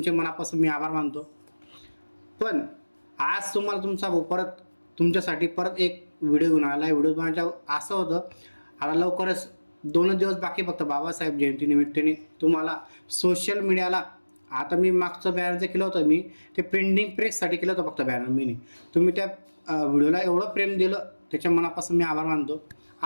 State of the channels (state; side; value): inverted; both; correlation -1.00